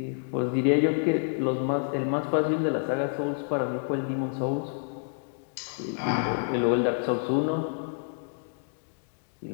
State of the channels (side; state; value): right; silent; digital silence